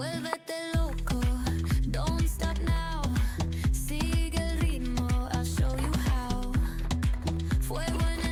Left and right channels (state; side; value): identical; both; correlation 1.00